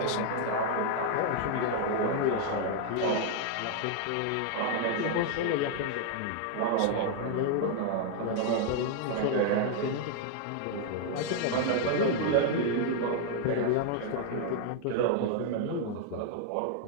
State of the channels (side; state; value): both; different; correlation 0.00